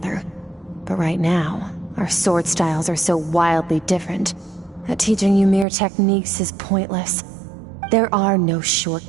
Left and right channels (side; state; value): left; drops out; at 5.7 s